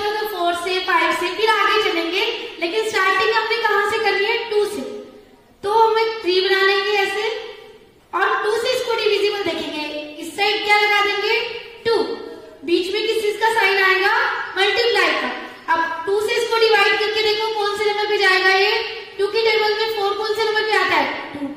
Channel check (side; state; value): both; identical; correlation 1.00